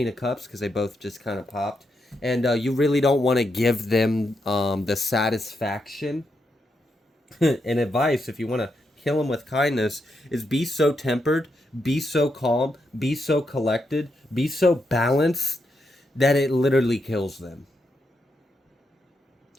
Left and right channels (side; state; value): both; normal; correlation 0.82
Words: of Cups, because they both just kind of popped, and you really don't want to give them the satisfaction and advice, if you want to kill them with kindness, is be so tempered, be so calm, be so collected, be so balanced that it literally kills them.